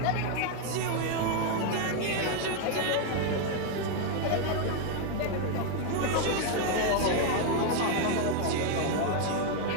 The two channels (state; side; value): different; both; correlation 0.01